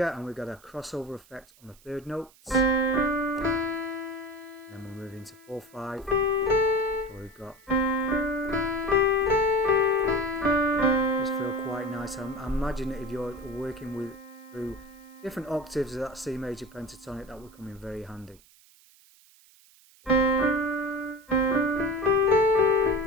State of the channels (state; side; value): noise; right; hiss, 27 dB below the sound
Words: and we've got a crossover effect on the 3rd notes. And then we'll move into 4, 5. So we've got. Just feel quite nice. I imagine that if you're working through different octaves of that C major pentatonic, that would come in very handy.